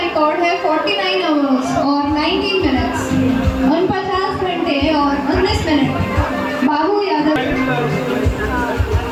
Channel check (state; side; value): identical; both; correlation 1.00